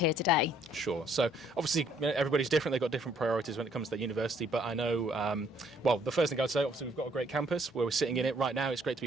today? Sure. So obviously everybody's different. They've got different priorities when it comes to their university. But I know, well, the first thing I'd say, obviously we've got a great campus where we're sitting in it right now. It's great to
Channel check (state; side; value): normal; both; correlation 0.64